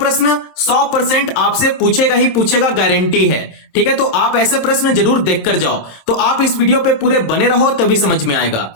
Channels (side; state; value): right; late; 26 ms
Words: 100% आपसे पूछेगा ही पूछेगा, गारंटी है। ठीक है, तो आप ऐसे प्रश्न जरूर देख कर जाओ। तो आप इस वीडियो पे पूरे बने रहो तभी समझ में आएगा।